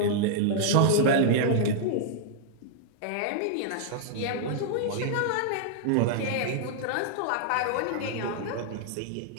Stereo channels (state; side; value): different; both; correlation -0.01